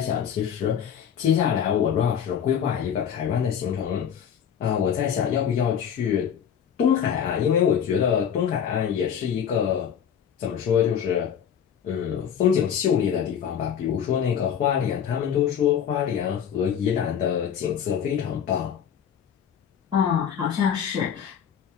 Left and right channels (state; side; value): quieter; right; 8.4 dB